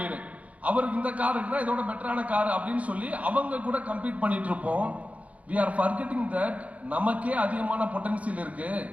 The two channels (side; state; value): left; late; 0.067 ms